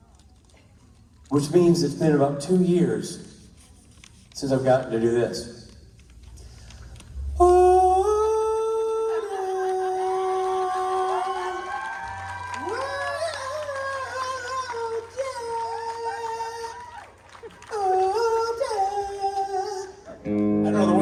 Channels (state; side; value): identical; both; correlation 1.00